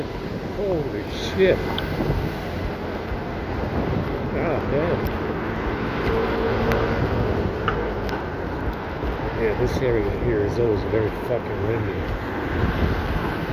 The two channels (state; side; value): identical; both; correlation 1.00